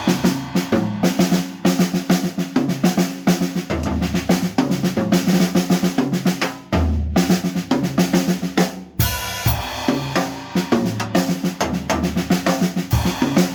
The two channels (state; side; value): identical; both; correlation 1.00